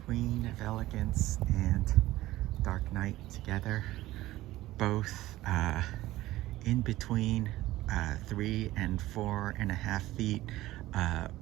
Queen of Elegance and Dark Night together, both in between 3 and 4.5 feet,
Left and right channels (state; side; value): quieter; left; 16.5 dB